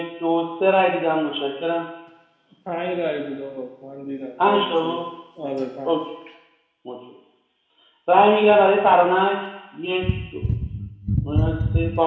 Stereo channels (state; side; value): identical; both; correlation 1.00